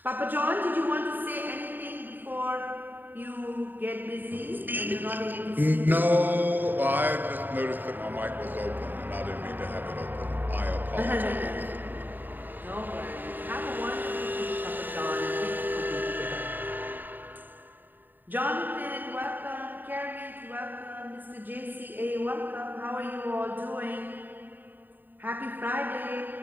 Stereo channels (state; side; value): late; left; 0.090 ms